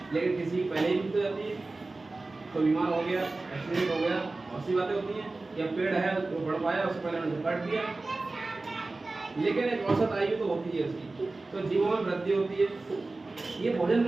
लेकिन किसी की पहले ही मृत्यु हो जाती है, तो बीमार हो गया, एक्सीडेंट हो गया, बहुत सी बातें होती हैं। या पेड़ है वो बढ़ पाया, उससे पहले उन्होंने काट दिया, लेकिन एक औसत आयु तो होती है उसकी। तो जीवों में वृद्धि होती है। ये भोजन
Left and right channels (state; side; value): quieter; left; 3.3 dB